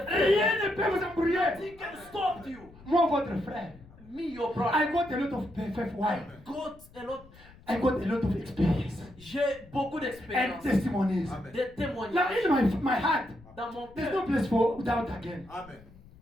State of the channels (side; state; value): left; noise; rumble, 23 dB below the sound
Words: Rien faith. ne peut vous embrouiller. Nothing can stop you. Moi, votre frère, Me, your I brother. got a lot of faith. Why? Got a lot. I got a lot of experience J'ai beaucoup and d'expérience, testimonies. Amen. des Now, témoignages in my heart, dans mon there's no cœur. place for doubt again. Amen.